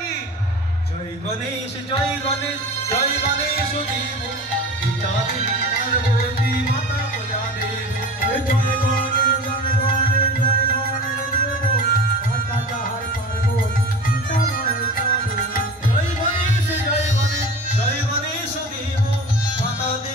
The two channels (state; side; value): normal; both; correlation 0.35